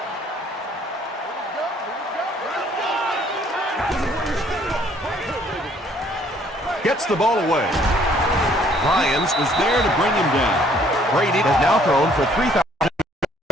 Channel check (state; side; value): normal; both; correlation 0.62